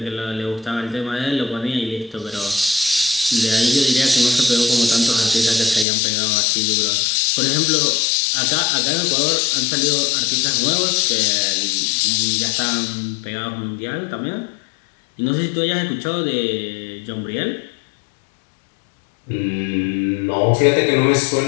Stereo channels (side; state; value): right; drops out; at 5.9 s